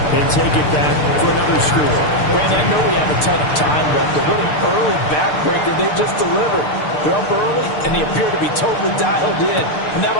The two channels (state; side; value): late; right; 6.7 ms